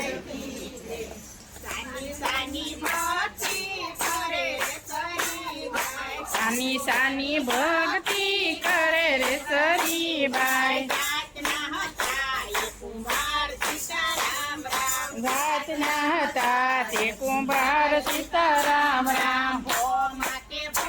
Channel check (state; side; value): identical; both; correlation 1.00